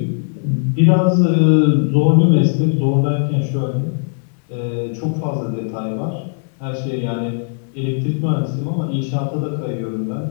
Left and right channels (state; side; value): silent; right; digital silence